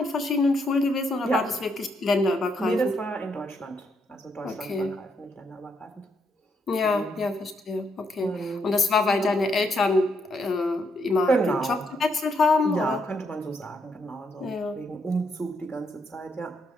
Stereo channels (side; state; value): both; normal; correlation 0.76